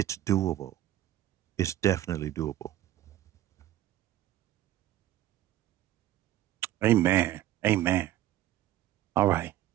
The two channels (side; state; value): left; quieter; 13.6 dB